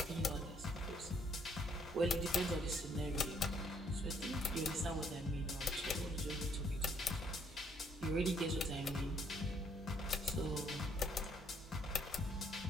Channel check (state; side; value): normal; both; correlation 0.67